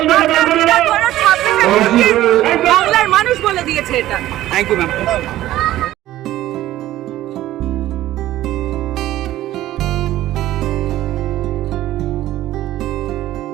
বাংলার মানুষ বলে দিয়েছে এটা। Thank you ma'am.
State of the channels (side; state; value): left; quieter; 14.5 dB